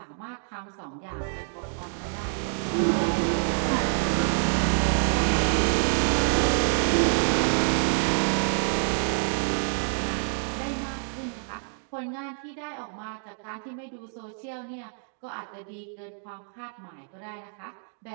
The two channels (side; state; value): left; silent; digital silence